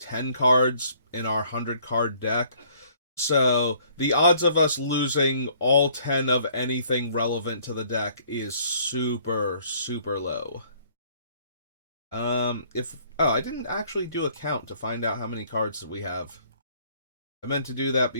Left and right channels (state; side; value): inverted; both; correlation -0.60